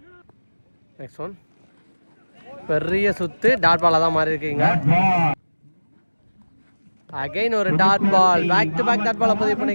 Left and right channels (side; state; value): both; inverted; correlation -1.00